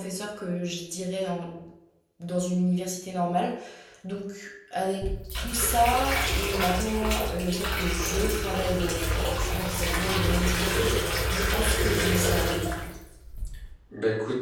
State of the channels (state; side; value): identical; both; correlation 1.00